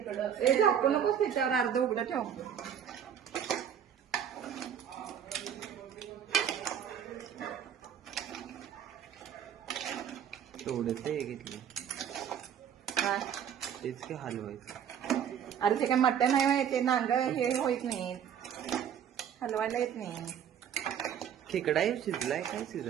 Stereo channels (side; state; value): left; quieter; 8.8 dB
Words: झाकू नकोस त्याच्यावर अर्ध उघडं ठेव. थोडस हे घेतलं तेच की हलवायचं. अरे ते काय मटण आहे ते नांग हे होत नाही, हलवायला येत नाही. खेकडा शिजलाय काय